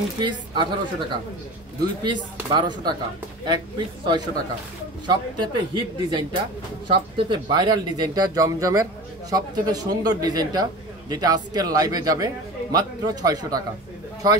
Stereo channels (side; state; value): both; normal; correlation 0.34